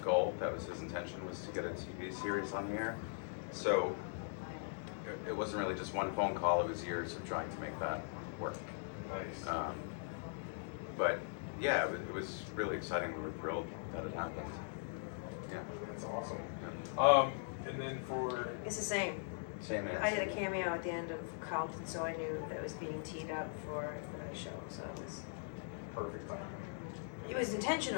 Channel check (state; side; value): silent; right; digital silence